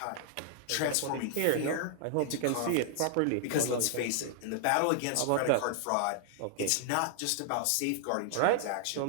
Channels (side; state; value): both; different; correlation -0.01